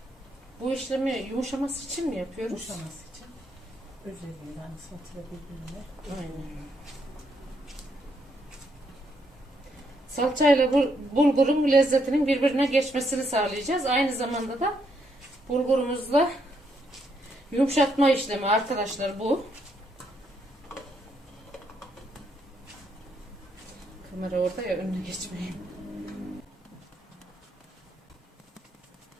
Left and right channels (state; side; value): normal; both; correlation 0.75